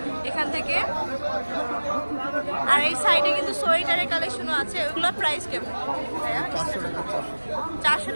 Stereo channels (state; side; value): inverted; both; correlation -1.00